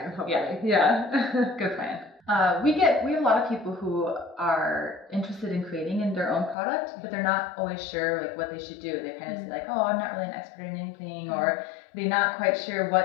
hopefully. Yeah. Good plan. We have a lot of people who are interested in creating in their own product, but they're not always sure like what they should do. They kind of say like, oh, I'm not really an expert in anything, or they're not quite sure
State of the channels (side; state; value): right; drops out; at 6.6 s